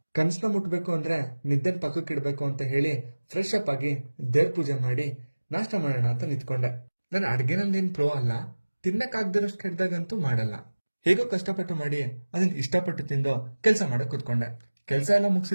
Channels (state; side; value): inverted; both; correlation -1.00